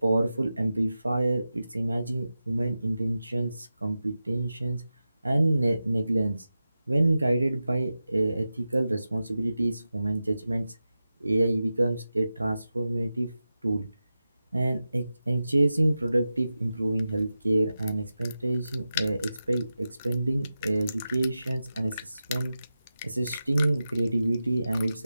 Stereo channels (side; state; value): both; inverted; correlation -0.93